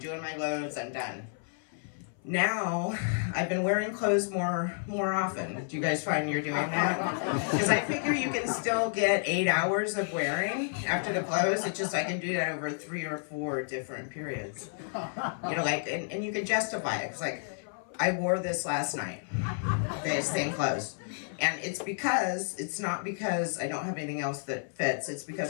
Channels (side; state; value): right; silent; 57 dB below the other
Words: my loads, I'm done. Now, I've been wearing clothes more often. Do you guys find you're doing that? Because I figure you can still get 8 hours of wearing after the clothes. It's just I can do that over 3 or 4 different periods. And you can justify it. It's like, I wore this last night, the same clothes. And it's not because I don't have anything else that fits. It's because